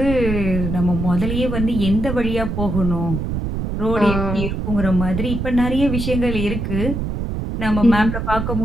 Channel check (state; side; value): noise; right; rumble, 3 dB below the sound